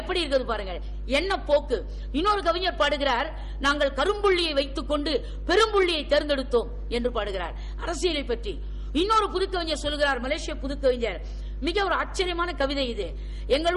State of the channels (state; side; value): identical; both; correlation 1.00